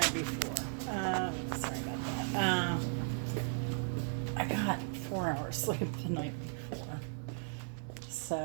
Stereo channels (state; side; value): silent; left; 53 dB below the other